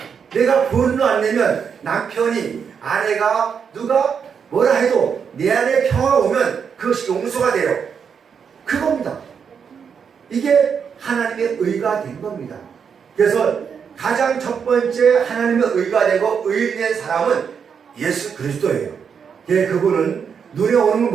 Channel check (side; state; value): left; quieter; 6.8 dB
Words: 내가 분노 안 내면 남편이 아내가 누가 뭐라 해도 내 안에 평화가 오면 그것이 용서가 돼요. 그겁니다. 이게 하나님의 의가 된 겁니다. 그래서 가장 첫 번째 하나님의 의가 되고 의인된 사람은 예수 그리스도예요. 그분은 눈에 오는